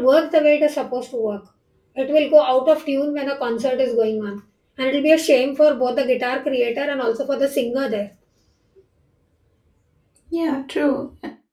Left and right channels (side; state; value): both; identical; correlation 1.00